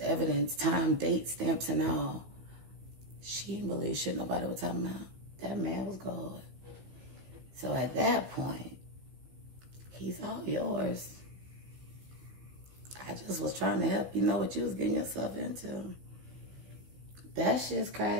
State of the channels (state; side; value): late; left; 16 ms